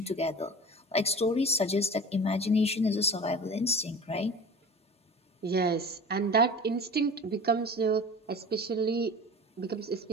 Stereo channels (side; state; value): both; normal; correlation 0.37